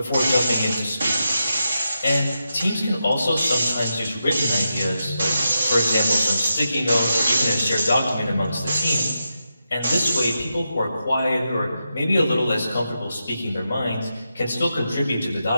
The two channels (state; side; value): inverted; both; correlation -0.87